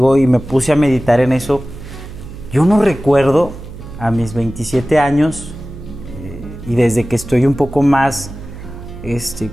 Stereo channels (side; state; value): right; noise; hum, 13 dB below the sound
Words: y me puse a meditar en eso. Yo no recuerdo a mis 27 años y desde que estoy un poco más